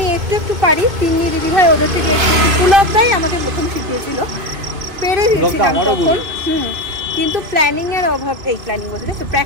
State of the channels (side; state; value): left; late; 2.5 ms